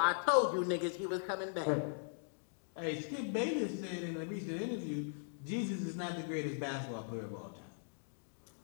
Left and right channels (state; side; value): silent; right; digital silence